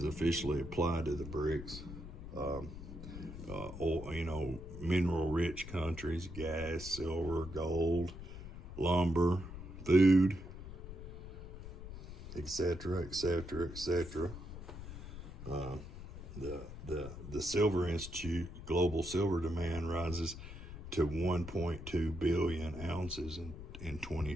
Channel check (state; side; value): noise; left; rumble, 11 dB below the sound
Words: officially applied to the BRICS. Mineral rich countries, gas, silver, gold, lumber, food, etc., etc., etc. The Silver Institute global silver demand rises to 1.2 billion ounces in